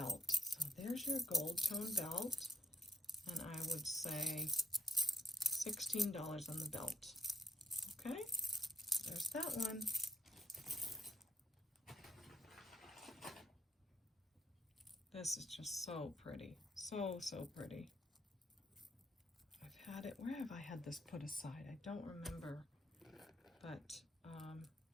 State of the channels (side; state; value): both; normal; correlation 0.69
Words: So there's your gold tone belt, and I would say $16 on the belt. Okay, there's that one. This is just so pretty, so pretty. I've had it, where have I had this put aside? I don't remember, but